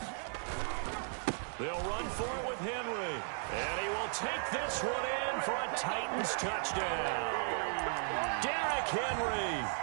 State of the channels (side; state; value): left; silent; 54 dB below the other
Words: They'll run for it with Henry. And he will take this one in for a Titans touchdown. Derrick Henry